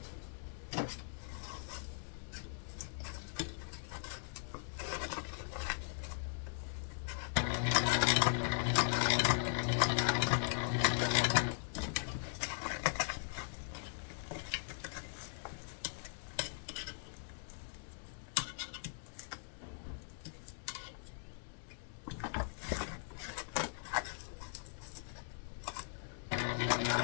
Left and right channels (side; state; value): right; silent; digital silence